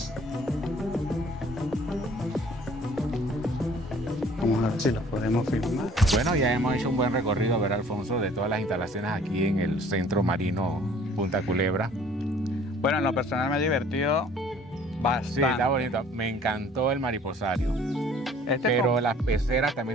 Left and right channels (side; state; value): both; normal; correlation 0.54